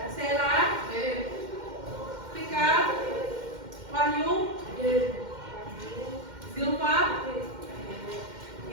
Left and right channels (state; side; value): late; left; 2.1 ms